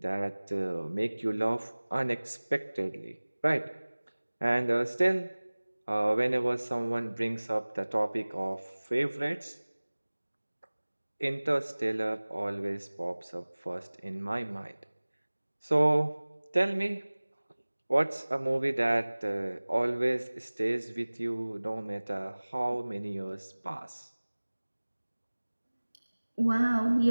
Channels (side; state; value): both; inverted; correlation -1.00